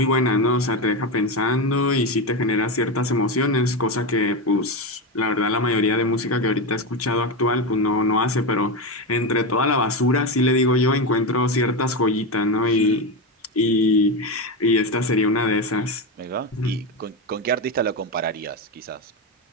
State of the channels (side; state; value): both; normal; correlation 0.15